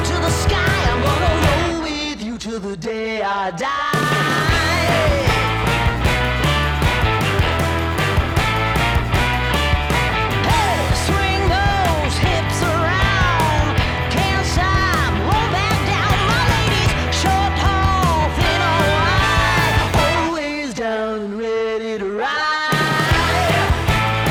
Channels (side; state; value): both; identical; correlation 1.00